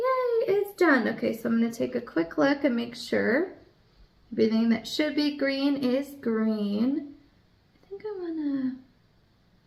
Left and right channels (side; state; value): both; identical; correlation 1.00